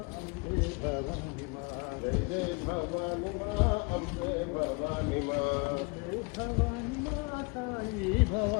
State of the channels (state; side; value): quieter; right; 31.0 dB